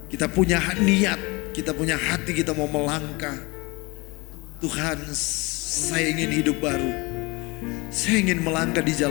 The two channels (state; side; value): quieter; right; 25.4 dB